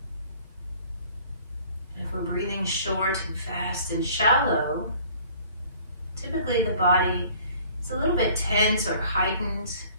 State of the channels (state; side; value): inverted; both; correlation -0.53